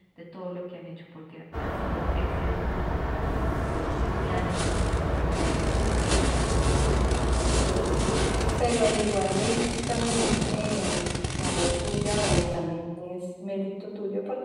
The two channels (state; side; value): identical; both; correlation 1.00